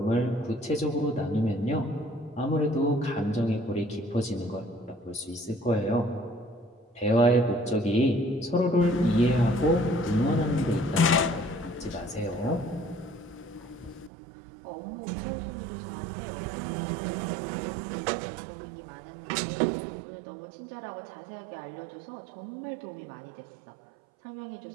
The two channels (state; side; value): drops out; left; at 14.1 s